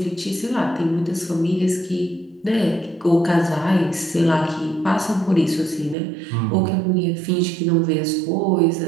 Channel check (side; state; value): left; drops out; at 6.0 s